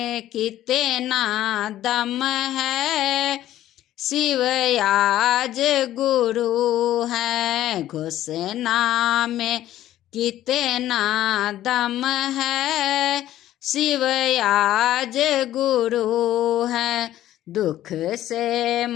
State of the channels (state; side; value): quieter; right; 13.3 dB